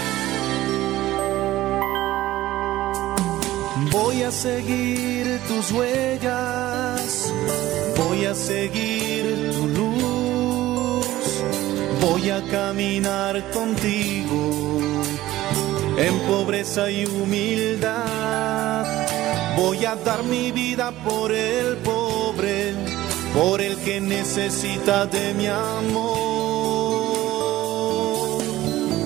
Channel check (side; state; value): left; quieter; 15.8 dB